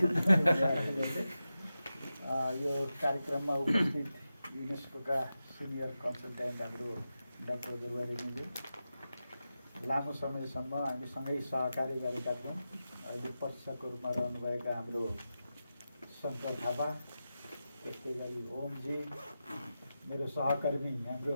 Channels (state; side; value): inverted; both; correlation -0.92